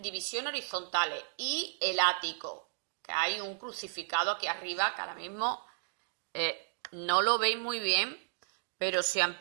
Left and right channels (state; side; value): silent; left; digital silence